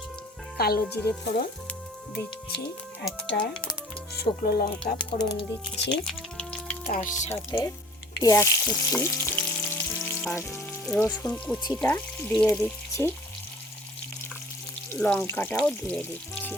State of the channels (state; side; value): normal; both; correlation 0.51